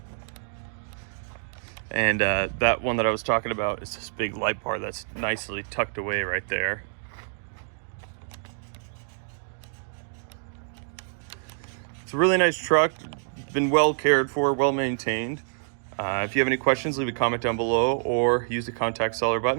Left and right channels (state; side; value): silent; left; digital silence